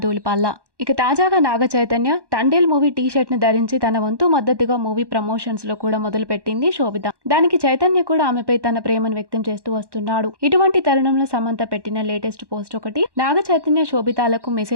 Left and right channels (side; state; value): left; late; 1.1 ms